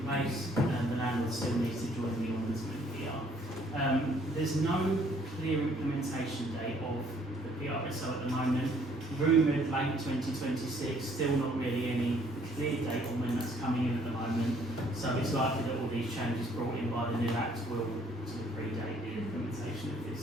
place, the landlord still needs to join the ombudsman here. There's no clear implementation date of the PRSO at the moment. Rumoured late 2026, still not really any clear date on when that's coming in at the moment. So it's likely that all these changes brought in by the new Act will sort of predate the implementation of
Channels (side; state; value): both; normal; correlation 0.62